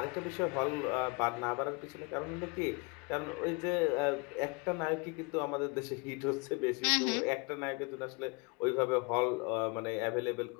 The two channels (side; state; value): right; quieter; 29.7 dB